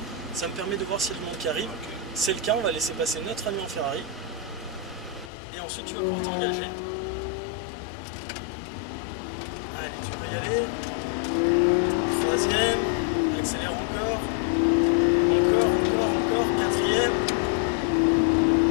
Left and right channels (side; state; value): right; drops out; at 5.3 s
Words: Ça me permet de voir s'il y a du monde qui arrive. C'est le cas, on va laisser passer notre ami en Ferrari. Et ensuite tu vas pouvoir t'engager. Allez, tu peux y aller. Troisième, accélère encore. Encore. Quatrième.